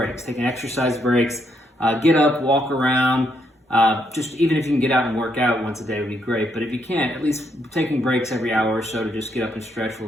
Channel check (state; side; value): normal; both; correlation 0.76